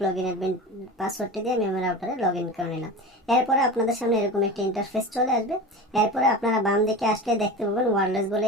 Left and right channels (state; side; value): normal; both; correlation 0.30